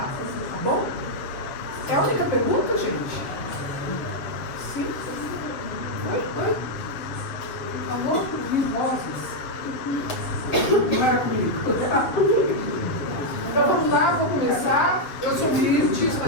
tá bom? É a única pergunta, gente? Sim? Oi? Por favor, vozes. Não era comigo. Então vamos lá, vou começar. Eu sou Mirtz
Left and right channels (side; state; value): right; late; 7.4 ms